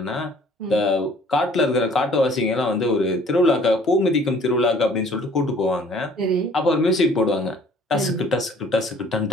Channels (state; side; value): normal; both; correlation 0.55